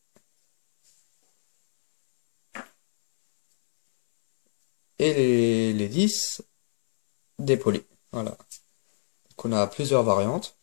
Et les 10 dépolis. Voilà. Donc on a plusieurs variantes.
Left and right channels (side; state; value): right; silent; 62 dB below the other